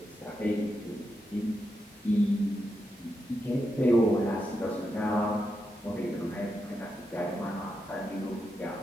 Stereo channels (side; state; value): both; normal; correlation 0.85